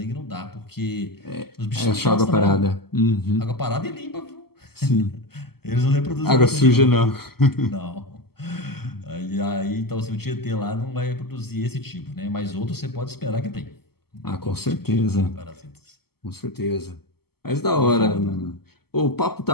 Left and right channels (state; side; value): late; right; 0.96 ms